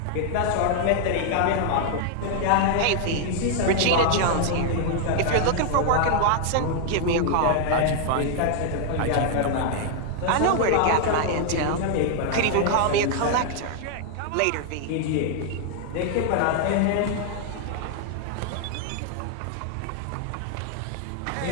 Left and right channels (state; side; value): different; both; correlation 0.00